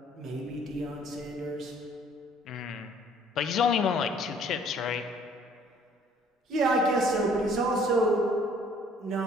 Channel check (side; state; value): both; normal; correlation 0.58